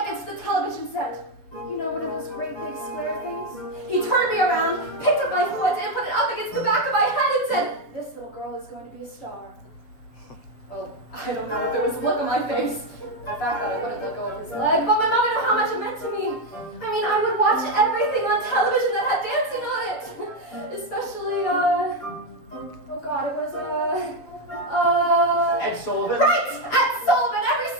against the television set. You know, one of those great big square things? He turned me around, picked up my foot, and put it up against the back of my head and said, "This little girl is going to be a star." Well, I don't know if it was the look on my face, the fact that I wouldn't let go of his leg, but my mom knew how much it meant to me. I mean, I would watch everything on television that had dancing on it. Especially, oh God, it was, Ed Sullivan? Right! Ed Sullivan, every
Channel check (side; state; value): right; late; 7.6 ms